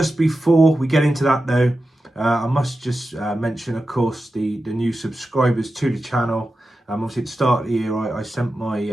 before we get into that though, I must just mention, of course, the new subscribers to the channel. Obviously at the start of the year I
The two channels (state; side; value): normal; both; correlation 0.92